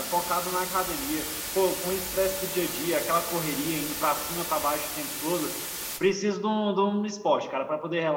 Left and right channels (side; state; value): both; identical; correlation 1.00